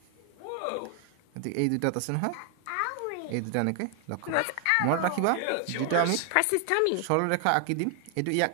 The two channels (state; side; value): different; both; correlation 0.00